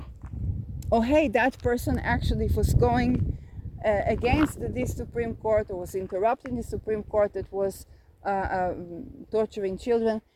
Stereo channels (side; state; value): both; identical; correlation 1.00